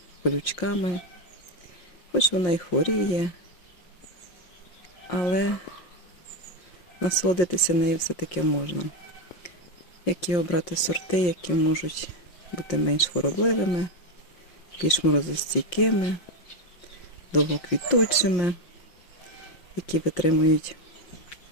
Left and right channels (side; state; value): right; late; 5.7 ms